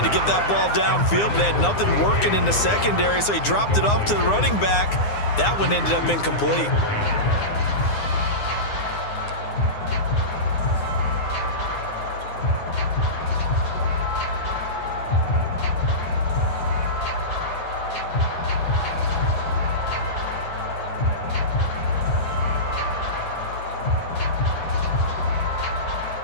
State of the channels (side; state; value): right; late; 9.8 ms